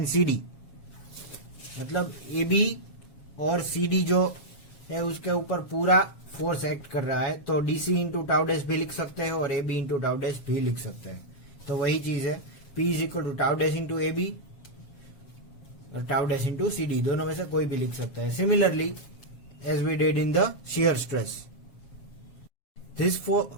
CD, मतलब AB और CD जो है उसके ऊपर पूरा फोर्स एक्ट कर रहा है, तो DC इंटू टाउ डैश भी लिख सकते हैं और AB इंटू टाउ डैश भी लिख सकते हैं। तो वही चीज है, P is equal to tau dash into A B or tau dash into C D, दोनों में से कोई भी लिख सकता है। Similarly as we did in the shear stress, this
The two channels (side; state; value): right; late; 7.3 ms